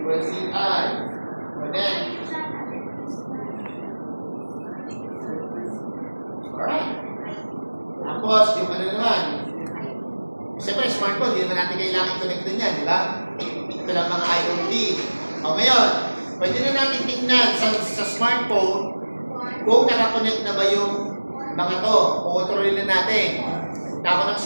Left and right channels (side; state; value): both; inverted; correlation -1.00